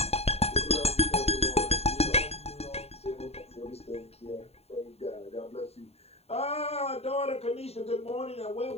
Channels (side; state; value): right; late; 0.30 ms